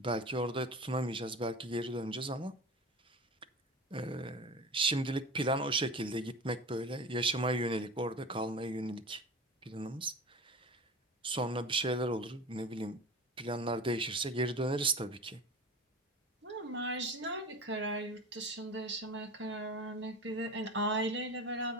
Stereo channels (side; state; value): both; normal; correlation 0.32